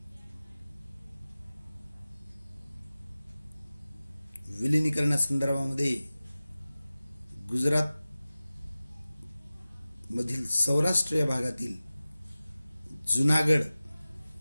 विलिनीकरणासंदर्भामध्ये गुजरात मधील सौराष्ट्र या भागातील जुनागड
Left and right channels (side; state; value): both; inverted; correlation -0.97